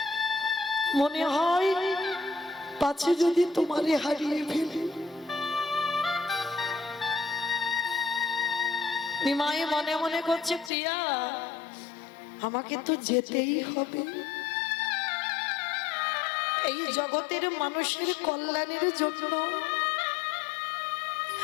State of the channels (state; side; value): drops out; right; at 10.7 s